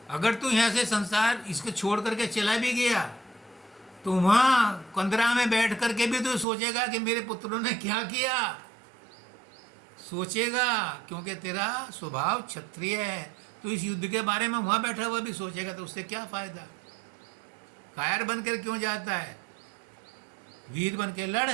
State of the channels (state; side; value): drops out; left; at 6.5 s